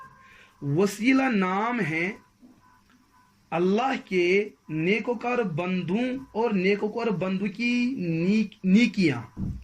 وسیلہ نام ہے اللہ کے نیکوکار بندوں اور نیکوکار بندوں کی نیکیاں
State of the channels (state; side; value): identical; both; correlation 1.00